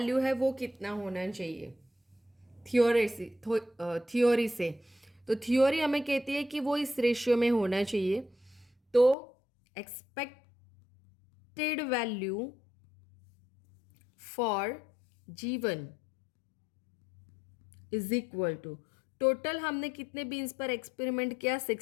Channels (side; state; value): right; drops out; at 9.2 s